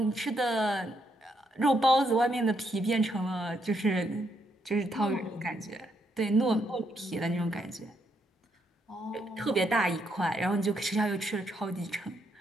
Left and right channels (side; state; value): both; normal; correlation 0.76